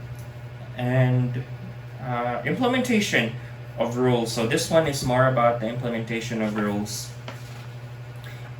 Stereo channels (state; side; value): identical; both; correlation 1.00